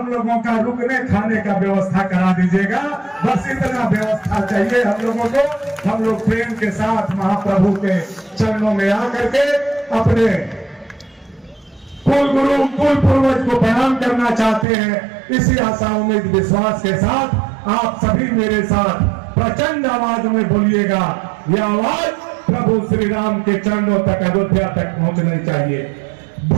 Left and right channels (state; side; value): drops out; left; at 14.7 s